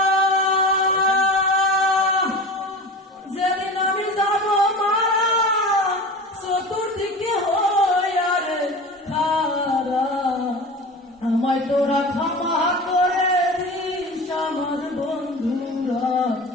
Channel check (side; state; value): both; normal; correlation 0.33